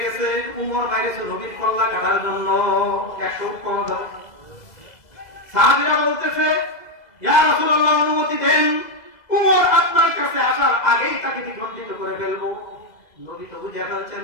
গেছে, উমর বাইরেছে নবীর কল্লা কাটার জন্য 100 উপকরণ ধরে। সাহাবীরা বলতেছে, ইয়া রাসূলুল্লাহ, অনুমতি দেন, উমর আপনার কাছে আসার আগেই তাকে দ্বিখণ্ডিত করে ফেলবো। নবী তো বুঝে ফেলছেন,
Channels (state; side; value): late; right; 2.0 ms